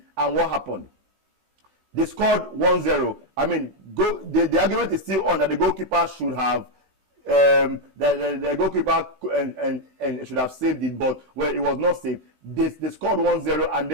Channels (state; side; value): late; left; 16 ms